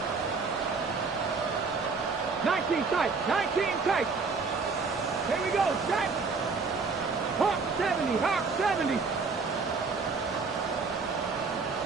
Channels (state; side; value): quieter; left; 4.6 dB